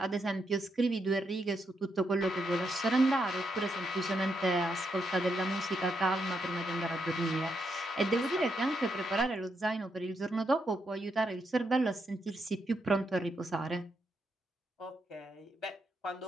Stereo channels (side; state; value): both; normal; correlation 0.80